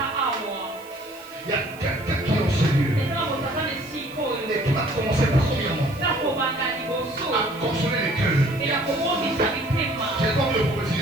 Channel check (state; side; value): noise; right; hiss, 22 dB below the sound